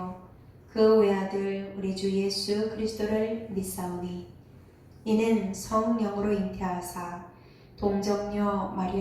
그 외아들 우리 주 예수 그리스도를 믿사오니 이는 성령으로 잉태하사 동정녀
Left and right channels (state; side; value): identical; both; correlation 1.00